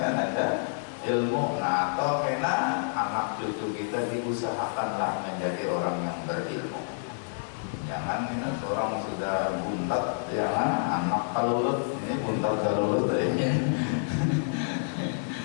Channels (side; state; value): right; silent; digital silence